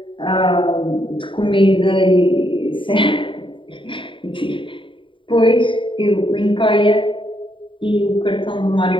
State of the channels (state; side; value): late; right; 0.25 ms